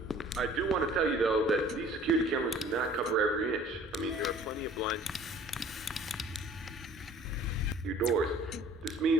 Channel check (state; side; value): normal; both; correlation 0.51